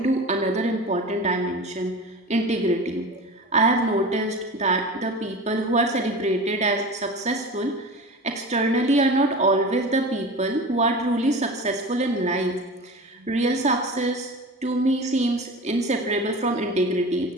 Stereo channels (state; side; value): normal; both; correlation 0.33